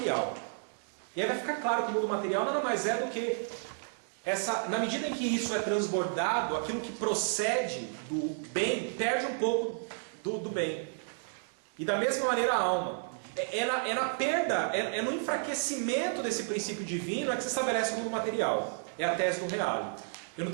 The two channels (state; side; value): silent; left; digital silence